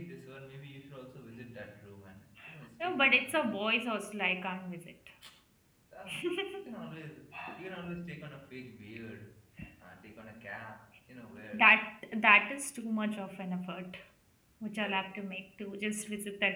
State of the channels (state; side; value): identical; both; correlation 1.00